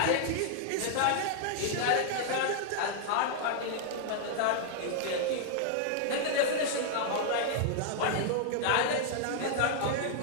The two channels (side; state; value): both; different; correlation 0.00